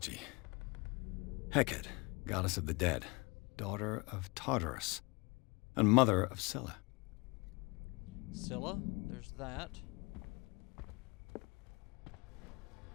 Hecate, goddess of the dead, daughter of Tartarus, and mother of Scylla. Scylla, there's that.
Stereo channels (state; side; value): quieter; right; 27.4 dB